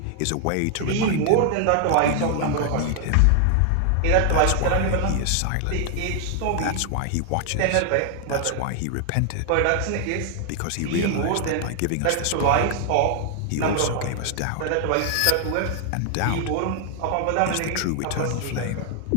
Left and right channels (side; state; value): both; different; correlation 0.00